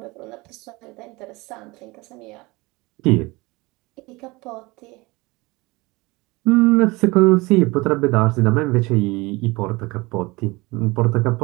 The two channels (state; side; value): quieter; left; 23.4 dB